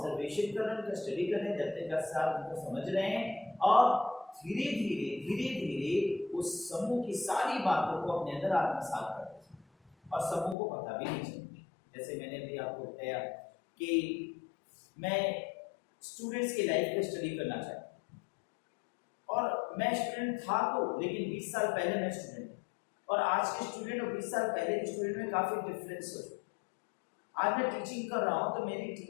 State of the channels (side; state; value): right; drops out; at 10.6 s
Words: कर रहे हैं, उनका स्टडी कर रहे हैं, जब तक साथ उनको समझ रहे हैं और धीरे धीरे उस समूह की सारी बातों को अपने अंदर आत्मसात कर रहे हैं और समूह को पता भी नहीं चलती। जैसे मैंने भी आपको बताया कि मैं स्टूडेंट्स की लाइफ पे स्टडी करना चाहता हूँ और मैं स्टूडेंट था तो, लेकिन 20 साल पहले मैं स्टूडेंट था और आज के स्टूडेंट और 20 साल पहले के स्टूडेंट में काफ़ी डिफरेंस हो। आज मैं टीचिंग कर रहा हूँ तो मेरी